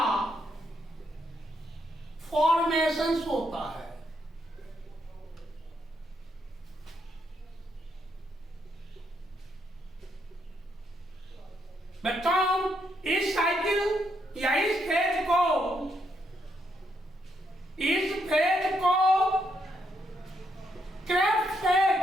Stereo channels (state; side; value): normal; both; correlation 0.77